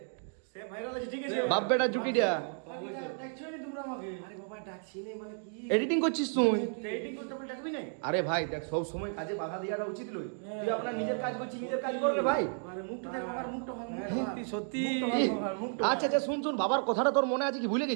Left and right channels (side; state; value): left; silent; 55 dB below the other